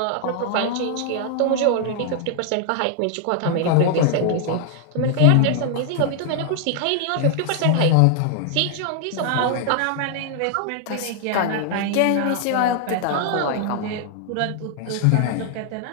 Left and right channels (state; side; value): different; both; correlation 0.00